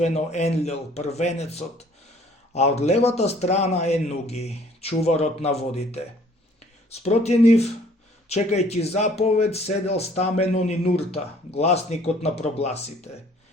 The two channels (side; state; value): both; normal; correlation 0.57